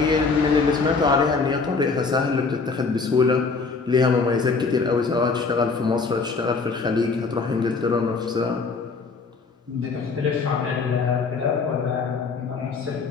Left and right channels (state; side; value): quieter; right; 4.5 dB